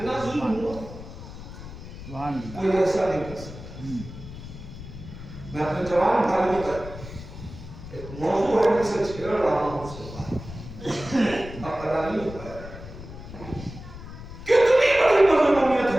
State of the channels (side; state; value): left; noise; rumble, 13 dB below the sound